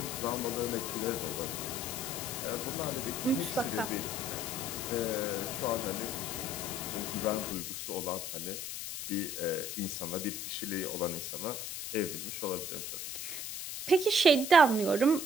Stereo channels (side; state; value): left; noise; hiss, 5 dB below the sound